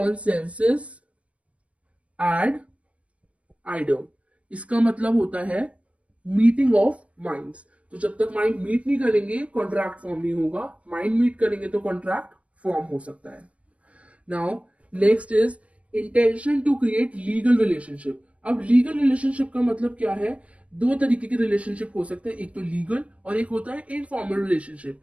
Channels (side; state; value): left; late; 0.064 ms